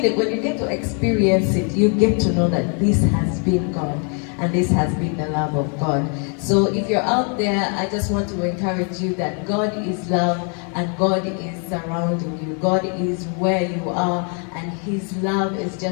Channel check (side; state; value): right; quieter; 39.6 dB